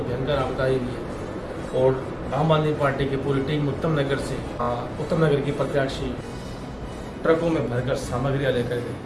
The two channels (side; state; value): both; identical; correlation 1.00